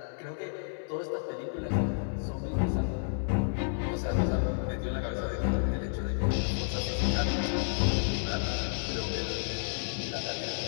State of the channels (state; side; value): silent; right; 57 dB below the other